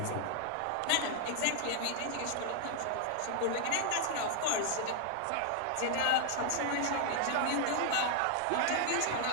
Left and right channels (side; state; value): both; different; correlation 0.00